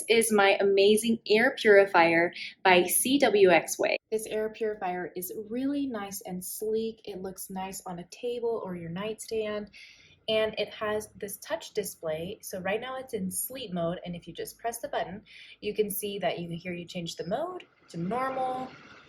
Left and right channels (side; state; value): both; identical; correlation 1.00